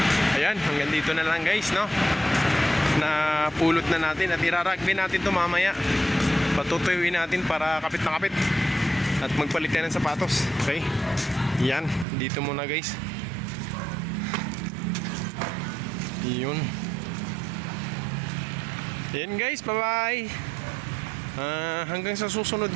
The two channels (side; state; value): left; drops out; at 12.1 s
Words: Ayan, hanggang dito na lang guys, no? Napulot na natin at irarugby natin to mamaya. Patutuyuin natin para kapit na kapit. At magpalit tayo ng sapatos. Okay? Yan, dito muna guys. Yun. Yan guys, bye bye. Hanggang sa susunod